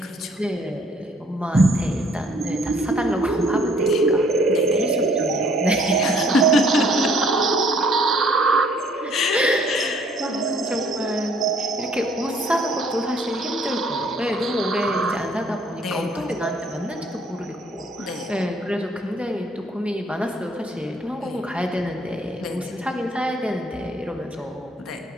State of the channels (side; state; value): both; normal; correlation 0.61